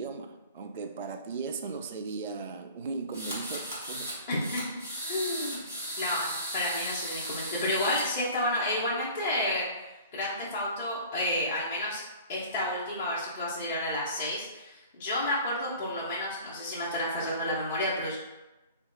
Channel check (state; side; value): inverted; both; correlation -0.42